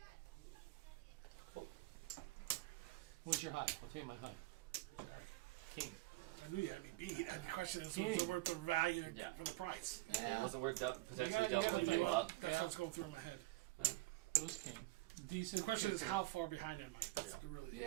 What's your high? I'll tell you my high. Jack. King. I knew you had me beat. And the question is, was it worth the value Yeah. for the price? It wasn't worth potentially You gotta doubling think you about up. That's Yeah. what's going through my head. It was king. Decent. The question is, kicker. how far behind am I? That's the really the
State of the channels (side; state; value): left; quieter; 19.4 dB